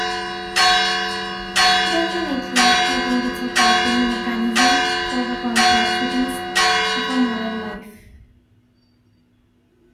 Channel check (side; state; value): both; identical; correlation 1.00